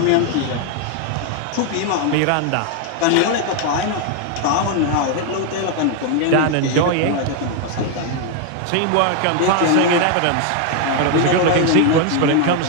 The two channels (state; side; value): different; both; correlation 0.01